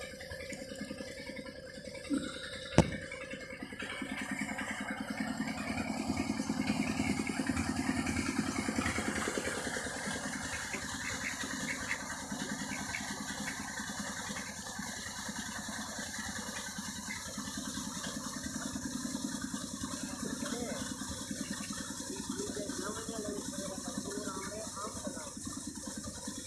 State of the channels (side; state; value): both; identical; correlation 1.00